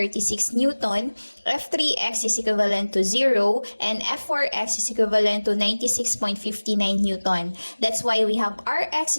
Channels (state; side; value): inverted; both; correlation -1.00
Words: Newton, F3x is equivalent to 0, and F4x is equivalent to 96.59 Newton. That's why we have Rx